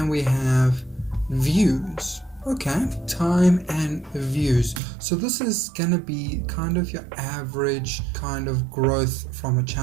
we have views. Okay, time and views. So this is gonna be kind of your average kind of growth from a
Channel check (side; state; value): left; drops out; at 4.8 s